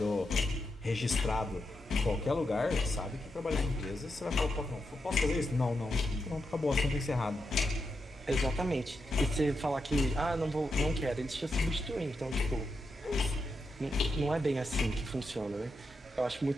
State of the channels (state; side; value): normal; both; correlation 0.85